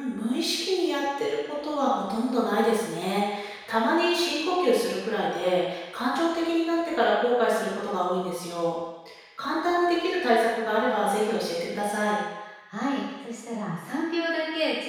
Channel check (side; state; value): both; identical; correlation 1.00